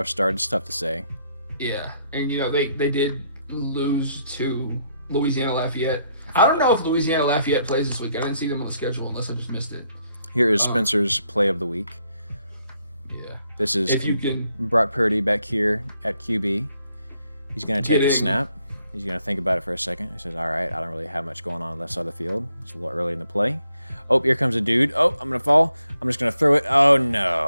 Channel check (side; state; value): both; inverted; correlation -0.74